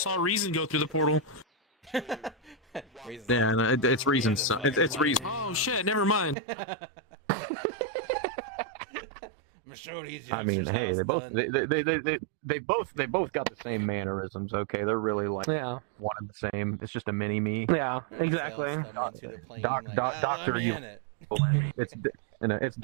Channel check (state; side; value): drops out; left; at 6.4 s